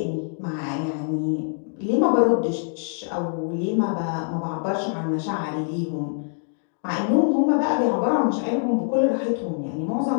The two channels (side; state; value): right; silent; 62 dB below the other